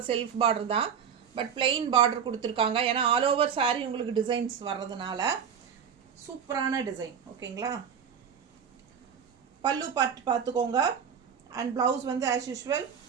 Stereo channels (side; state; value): left; quieter; 7.5 dB